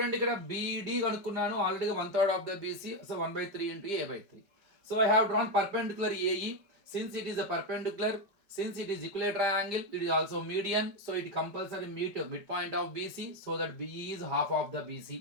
ఇక్కడ బీడీ కనుక్కున్నాను ఆల్రెడీగా 1/3 of the BC. So 1/3 into A/3. So I have drawn perpendicular A E. Since it is a perpendicular, since it is equilateral triangle, it is also median, so it compulsory meet midpoint of BC, so that BE is half of the BC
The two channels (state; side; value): late; left; 5.1 ms